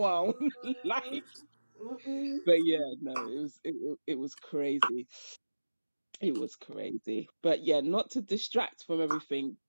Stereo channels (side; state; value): both; inverted; correlation -1.00